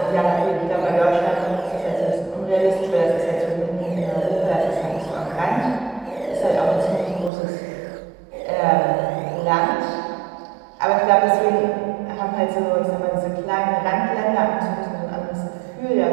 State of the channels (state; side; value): drops out; left; at 7.3 s